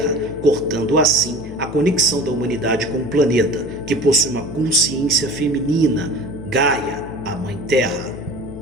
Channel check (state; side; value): noise; left; hum, 13 dB below the sound